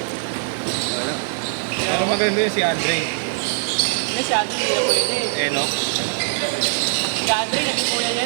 Wala. Pero maganda yun si Andre. Hindi, si Andre hindi na pwede. Enoch. Si Andre, naging kuya niya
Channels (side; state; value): left; silent; digital silence